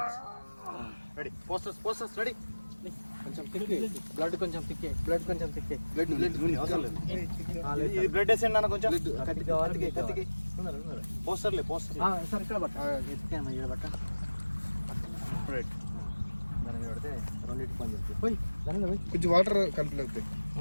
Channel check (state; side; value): inverted; both; correlation -1.00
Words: posters ready కొంచెం తిక్కి blood కొంచెం తిక్కే blood blood వేసేయండి అన్న కొంచెం కత్తికి పోస్టర్లే సార్ ఇక్కడ బట్ట ఎత్తికాను ఇక్కడ బట్ట రైట్ దాని మీద పడితే రెండింటి పని చెప్తాయి పోయి దాని మీద కొంచెం వాటర్ కంప్లీట్ అవుతాయి